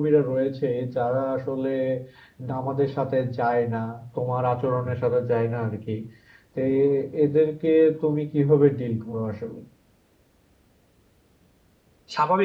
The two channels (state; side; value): identical; both; correlation 1.00